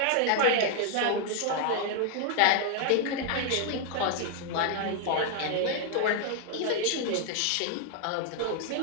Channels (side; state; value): both; different; correlation 0.00